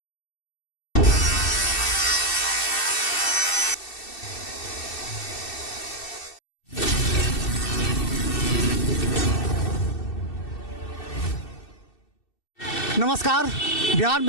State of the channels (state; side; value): late; right; 2.7 ms